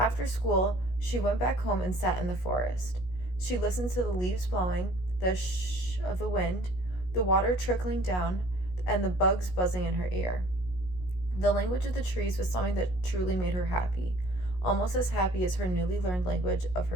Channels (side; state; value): right; late; 17 ms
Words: school, She went back home and sat in the forest. She listened to the leaves blowing, the shh of the wind, the water trickling down, and the bugs buzzing in her ear. The language of the trees was something that truly made her happy, almost as happy as her newly learned language of